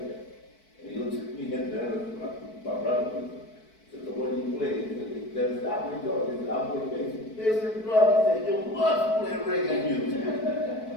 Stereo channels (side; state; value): right; late; 4.6 ms